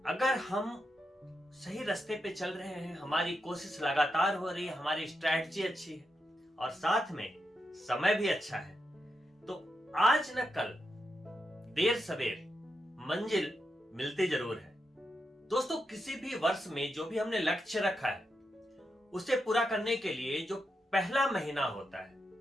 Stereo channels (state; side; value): normal; both; correlation 0.85